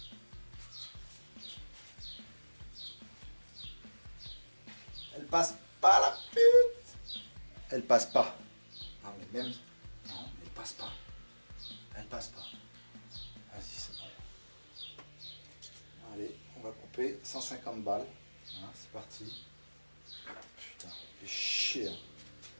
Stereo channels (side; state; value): both; inverted; correlation -1.00